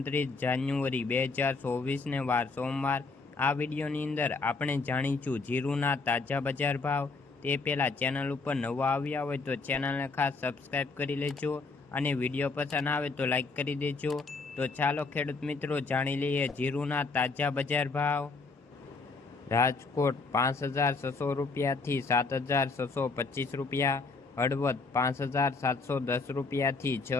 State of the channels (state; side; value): quieter; right; 4.0 dB